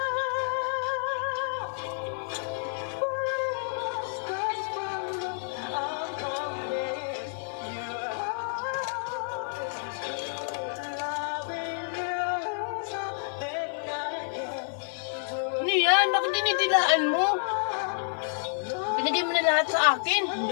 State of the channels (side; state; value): right; silent; digital silence